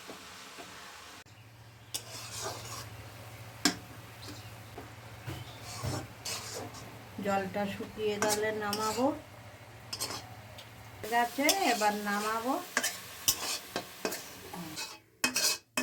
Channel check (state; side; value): identical; both; correlation 1.00